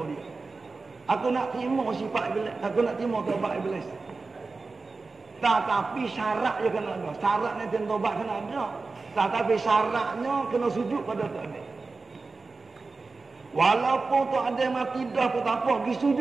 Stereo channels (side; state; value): left; quieter; 3.9 dB